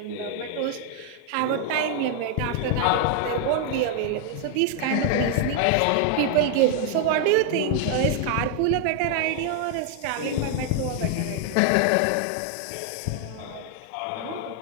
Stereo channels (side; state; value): both; different; correlation 0.00